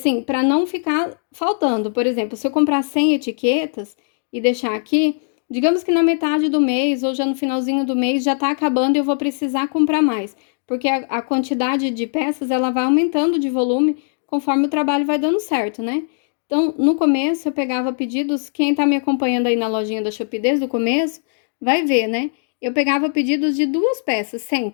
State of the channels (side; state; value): right; silent; 66 dB below the other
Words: para não ficar faltando, por exemplo, se eu comprar 100 etiquetas e deixar aqui, digamos que na metade do mês ou já no finalzinho do mês já tá acabando e eu vou precisar comprar mais, porque a quantidade de peças ela vai aumentando de volume conforme o trabalho vai dando certo, né? Então, no começo eu pegava pedidos, quem tá me acompanhando aí na lojinha da Shopee desde o começo, vai ver, né? Eu pegava pedidos de 2 peças